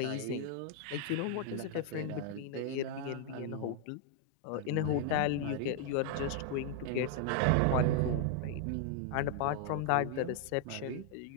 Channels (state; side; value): different; both; correlation 0.00